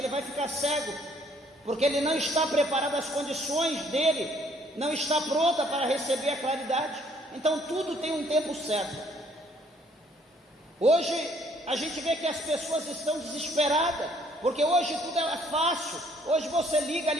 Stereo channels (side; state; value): both; normal; correlation 0.63